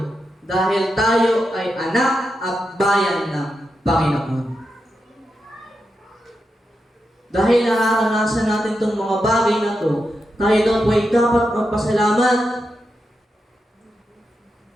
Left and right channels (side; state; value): both; normal; correlation 0.87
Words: dahil tayo ay anak at bayan ng Panginoon. Dahil nararanasan natin itong mga bagay na to, tayo daw po ay dapat magpasalamat.